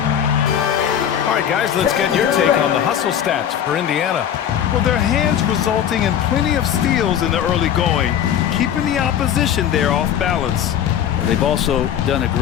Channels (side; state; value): right; quieter; 9.6 dB